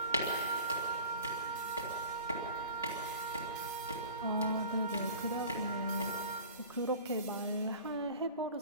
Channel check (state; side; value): inverted; both; correlation -0.42